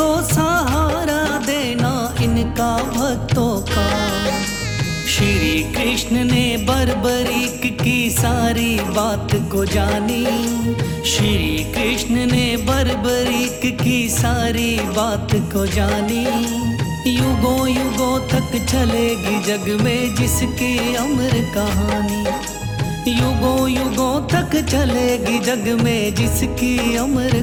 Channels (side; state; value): both; identical; correlation 1.00